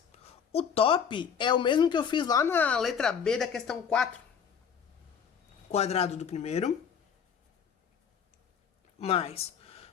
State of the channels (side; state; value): right; quieter; 7.2 dB